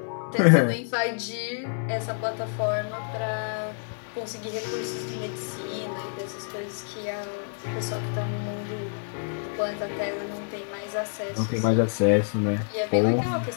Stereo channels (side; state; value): right; silent; digital silence